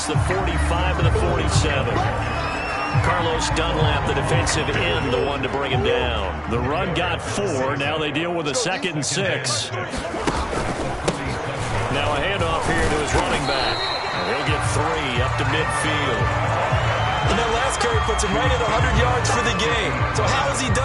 the 45 to the 47. Carlos Dunlap, the defensive end, the one to bring him down. The run got 4. Now they deal with a 2nd and 6. Now a handoff here to his running back. And he'll get 3 up to midfield. And that last carry puts him right at 100 yards for the game. So how has he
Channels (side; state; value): both; identical; correlation 1.00